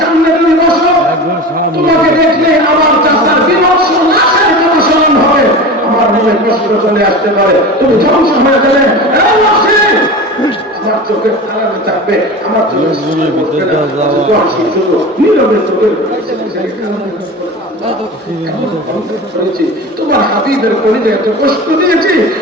সামনে তুমি বসো, তোমাকে দেখলে আমার চাচার বিভৎস নাশের কথা স্মরণ হবে, আমার মনে কষ্ট চলে আসতে পারে, তুমি ধ্বংস হয়ে গেলে আমার চোখের আড়ালে থাকবে, আমার চোখের সামনে বসবে না। শুধু নীরবে চোখের তোমার হাবিবের কলিজায় এত কষ্ট দিয়েছি,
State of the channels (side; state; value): both; normal; correlation 0.31